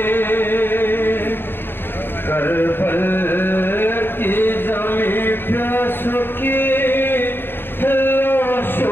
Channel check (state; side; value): late; right; 0.10 ms